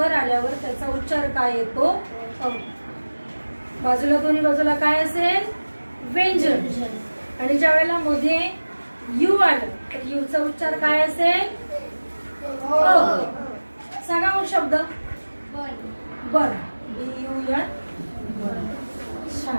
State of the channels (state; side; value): inverted; both; correlation -1.00